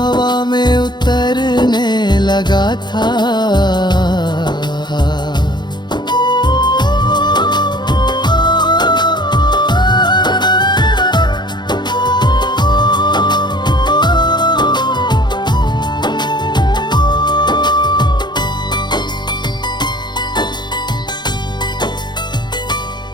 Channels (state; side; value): late; right; 0.21 ms